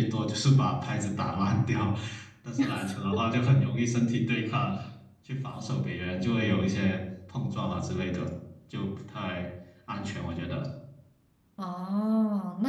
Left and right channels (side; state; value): both; identical; correlation 1.00